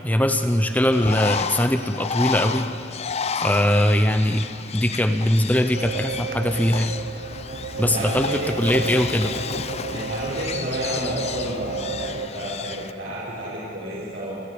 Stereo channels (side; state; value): both; normal; correlation 0.67